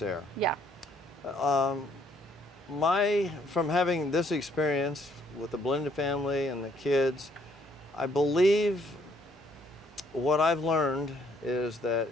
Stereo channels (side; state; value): both; normal; correlation 0.67